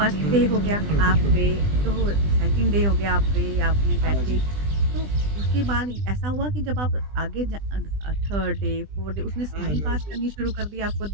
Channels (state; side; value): late; left; 20 ms